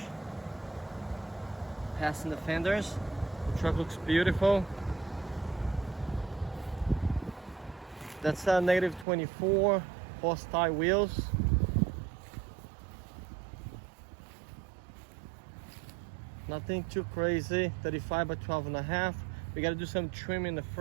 passing the fenders. The truck looks beautiful. That's a negative 24 horsepower wheels. Nothing too crazy. 35 by 12.5. We got to do some trim in the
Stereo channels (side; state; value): left; drops out; at 9.1 s